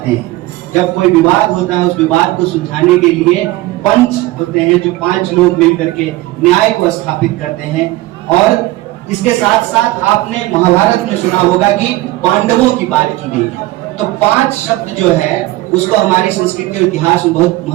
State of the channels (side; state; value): left; quieter; 18.1 dB